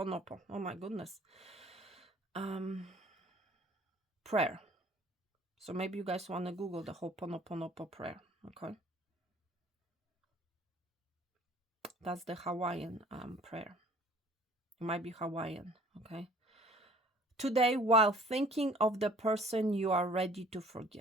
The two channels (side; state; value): both; normal; correlation 0.53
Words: Oh my goodness. Prayer. So maybe you guys want to Google the Ho'oponopono prayer, okay? That's the Hawaiian prayer. It might be Hawaiian, okay? Today, while thinking of the person you are ready to